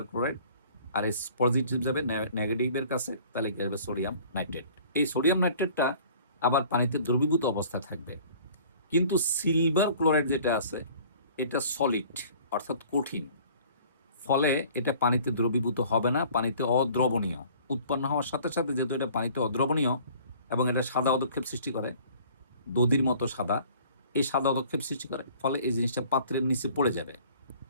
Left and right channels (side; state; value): both; inverted; correlation -0.51